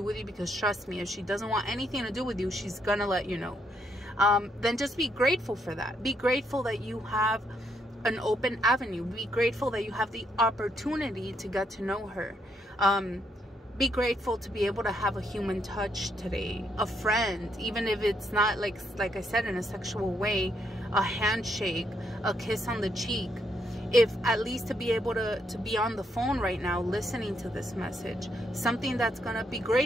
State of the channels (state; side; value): normal; both; correlation 0.75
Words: with you, because trust me, if she doesn't want anything to do with you, she's gonna let you know. Then just be grateful for that. Be grateful that you have an open avenue. Be grateful that you have the opportunity to get to know her. Be grateful to be able to have a human touch today, a friend, even if it's not like I said, in a sexual way, a handshake, a kiss on the cheek. If at least to be able to be on the phone right now listening to this message, something that's gonna be